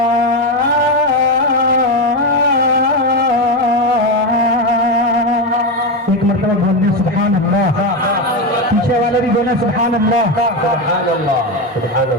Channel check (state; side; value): normal; both; correlation 0.12